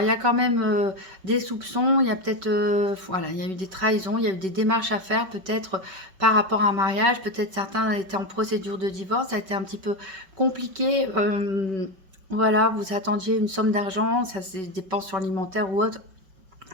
il y a quand même des soupçons. Il y a peut-être, voilà, il y a eu des trahisons. Il y a eu des démarches à faire, peut-être par rapport à un mariage. Peut-être certains étaient en procédure de divorce. Ça a été un petit peu compliqué. voilà, vous attendiez une somme d'argent, ça c'est des dépenses alimentaires ou autre,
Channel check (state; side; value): late; left; 5.2 ms